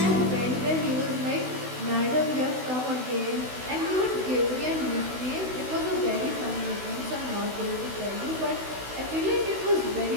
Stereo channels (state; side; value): late; left; 16 ms